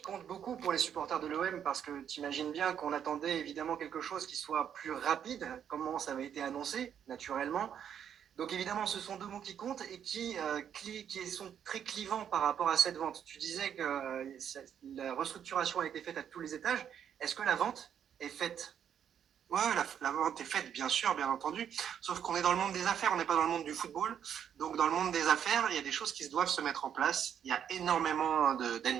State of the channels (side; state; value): left; quieter; 8.8 dB